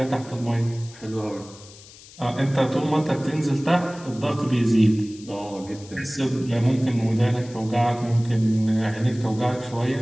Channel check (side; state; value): left; noise; hiss, 20 dB below the sound